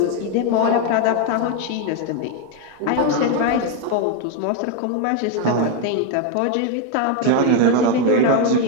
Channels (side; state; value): both; different; correlation 0.01